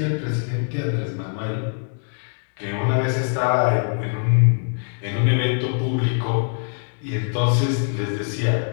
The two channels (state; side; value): silent; right; 64 dB below the other